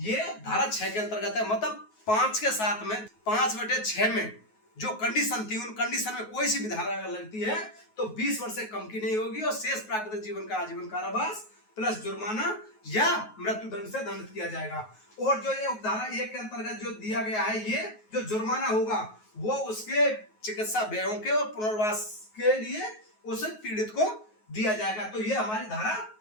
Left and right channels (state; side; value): late; right; 9.3 ms